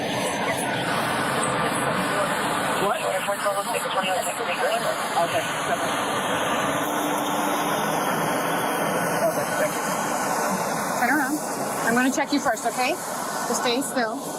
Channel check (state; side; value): identical; both; correlation 1.00